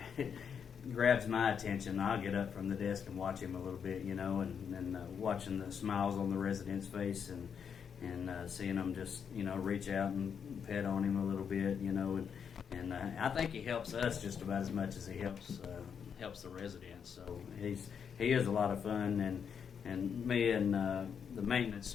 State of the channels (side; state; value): right; quieter; 7.2 dB